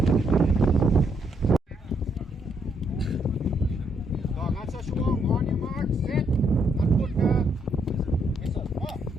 On your mark, set, and put the whistle. Off.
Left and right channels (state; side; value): normal; both; correlation 0.74